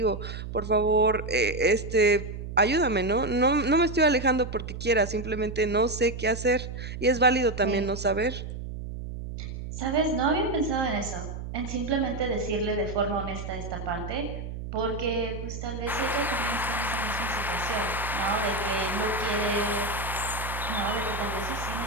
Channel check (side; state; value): right; noise; hum, 8 dB below the sound